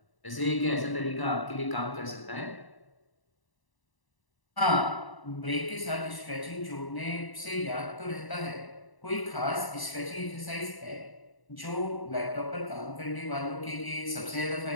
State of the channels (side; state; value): right; late; 1.0 ms